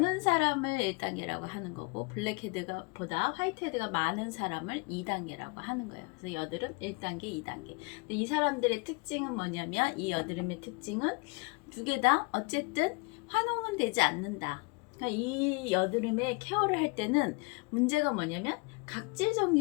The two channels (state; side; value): quieter; right; 30.4 dB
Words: 사람을 1단계라고 하는 거고, 블랙헤드가 보다 화이트헤드가 많은 사람을 2단계라고 하는 거예요. 그래서 여드름 1단계, 2단계. 근데 이 사람들의 특징은 뭐냐면, 이 여드름의 특징은 두 개 다 어쨌든 환웅은 되지 않는다. 그러니까 이 여드름의 케어를 할 때는 문제가 뭐냐면 각질